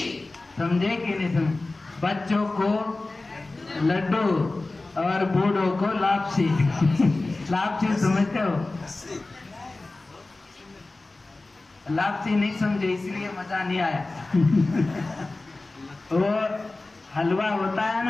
समझे कि नहीं समझे? बच्चों को लड्डू और बूढ़ों को लापसी लापसी समझते हो? लापसी नहीं समझे इसलिए मजा नहीं आया वो हलवा होता है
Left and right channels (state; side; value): quieter; right; 3.2 dB